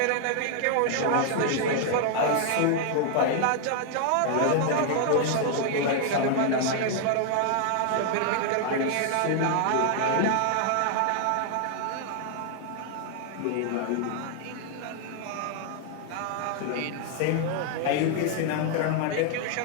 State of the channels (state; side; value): different; both; correlation 0.00